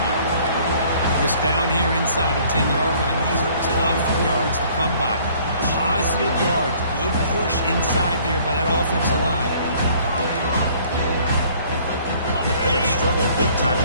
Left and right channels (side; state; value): both; inverted; correlation -0.57